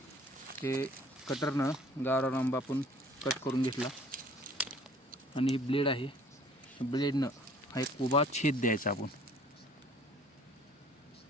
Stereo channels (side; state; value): both; normal; correlation 0.53